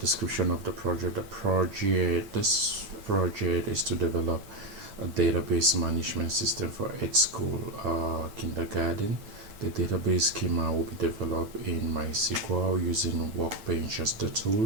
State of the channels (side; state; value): left; late; 9.0 ms